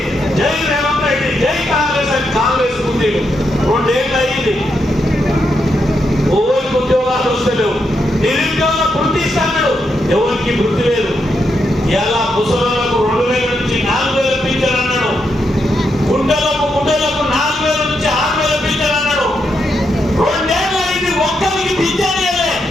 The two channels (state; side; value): normal; both; correlation 0.82